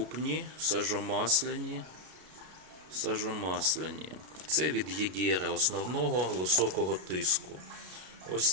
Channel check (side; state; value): left; late; 33 ms